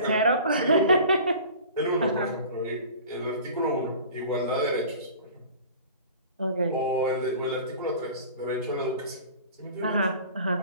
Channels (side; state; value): both; inverted; correlation -0.42